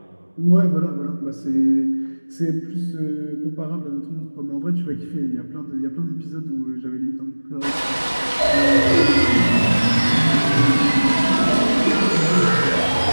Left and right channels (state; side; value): inverted; both; correlation -1.00